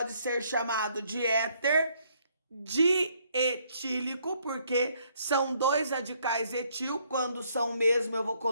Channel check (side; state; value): both; inverted; correlation -0.68